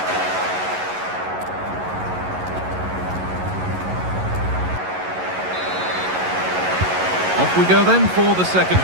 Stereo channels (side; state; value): left; late; 11 ms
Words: Off we go then for the second